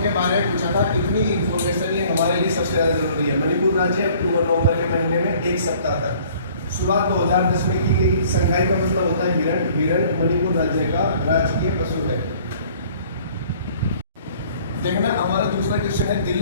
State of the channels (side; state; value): both; inverted; correlation -0.54